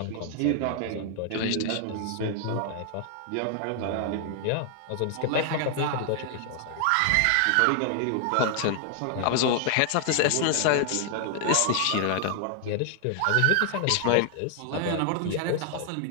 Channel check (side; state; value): both; different; correlation 0.00